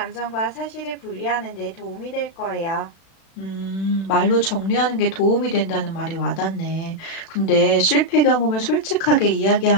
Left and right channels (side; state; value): right; late; 36 ms